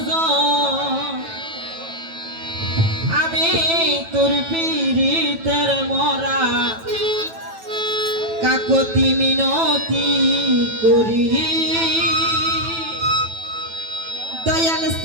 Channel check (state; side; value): late; left; 9.1 ms